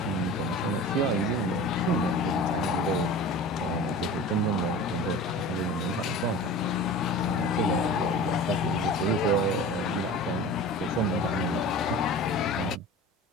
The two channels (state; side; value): normal; both; correlation 0.37